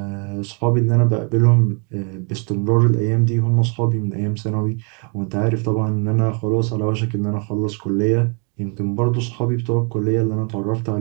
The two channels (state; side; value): quieter; left; 37.3 dB